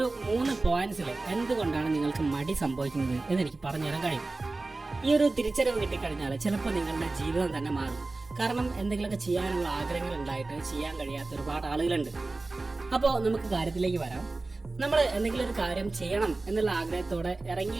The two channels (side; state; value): left; quieter; 3.4 dB